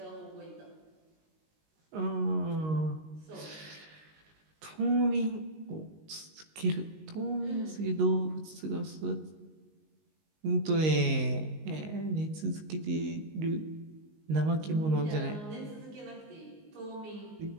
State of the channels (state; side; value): late; left; 19 ms